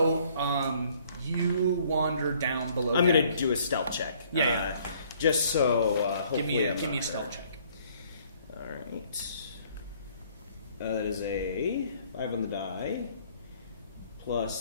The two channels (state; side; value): inverted; both; correlation -0.61